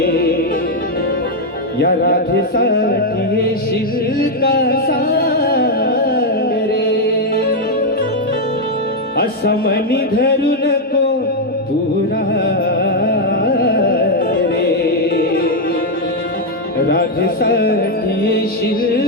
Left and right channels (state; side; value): normal; both; correlation 0.01